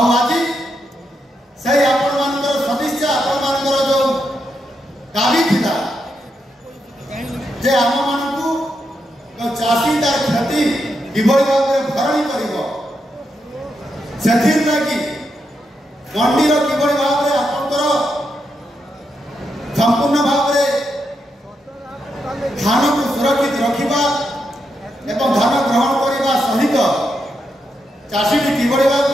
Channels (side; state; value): both; normal; correlation 0.83